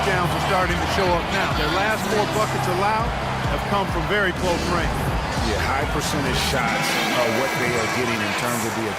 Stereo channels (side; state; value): both; identical; correlation 1.00